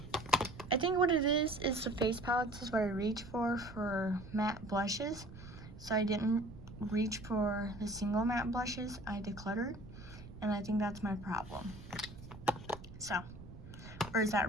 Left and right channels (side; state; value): right; noise; rumble, 15 dB below the sound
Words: I think what it is the face palettes is what I reach for matte blushes. So I didn't reach for the single matte blushes. I decluttered, and I think that's my problem. So, or is